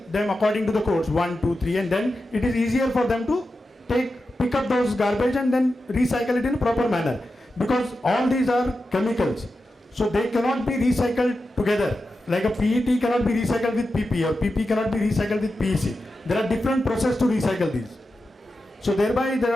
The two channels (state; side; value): normal; both; correlation 0.91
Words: them according to the codes 1, 2, 3, and then it is easier for them to pick up those garbage and then recycle it in a proper manner, because all these are chemicals. So they cannot be recycled together. Like a PET cannot be recycled with PP, or PP cannot be recycled with PEC. There are different processes to recycle these. So thereby